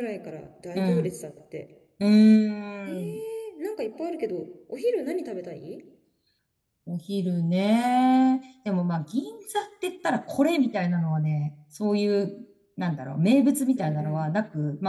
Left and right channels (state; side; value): identical; both; correlation 1.00